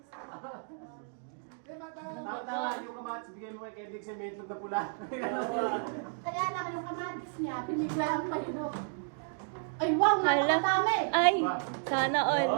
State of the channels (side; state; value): left; silent; 56 dB below the other